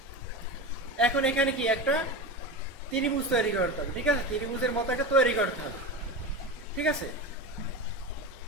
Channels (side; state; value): both; normal; correlation 0.25